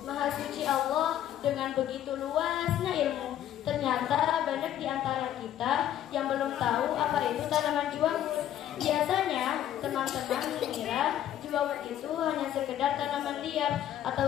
Maha suci Allah dengan begitu luasnya ilmu. Ternyata banyak di antara kita yang belum tahu apa itu tanaman Jewawut. Biasanya teman-teman mengira Jewawut itu hanya sekedar tanaman liar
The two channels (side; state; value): right; quieter; 11.4 dB